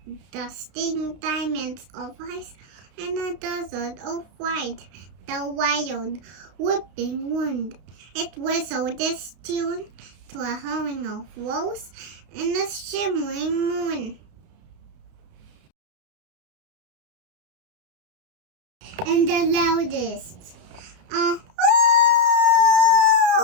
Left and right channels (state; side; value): late; left; 32 ms